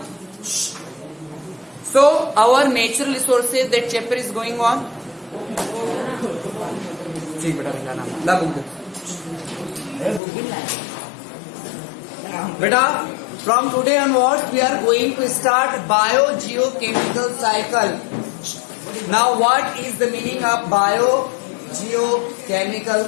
so our natural resources, that chapter is going on. Beta, from today onwards we are going to start biogeochemical cycle. Now what is the meaning of biogeochemical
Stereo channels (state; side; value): drops out; right; at 10.2 s